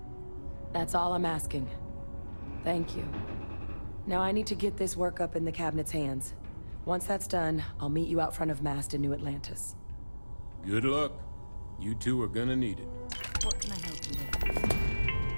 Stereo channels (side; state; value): both; inverted; correlation -1.00